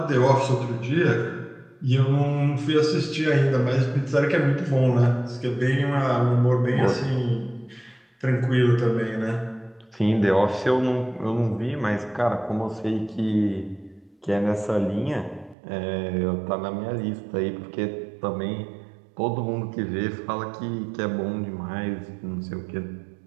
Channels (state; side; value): drops out; left; at 15.6 s